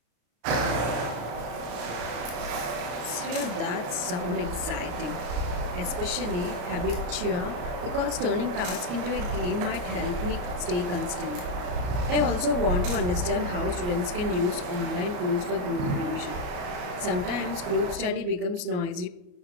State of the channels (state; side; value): late; left; 34 ms